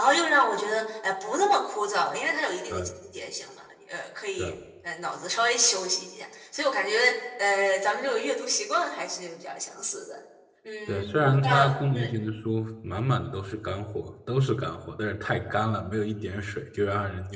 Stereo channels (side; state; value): both; identical; correlation 1.00